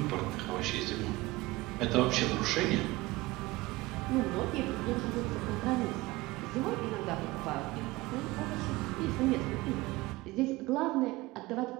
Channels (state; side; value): quieter; left; 20.4 dB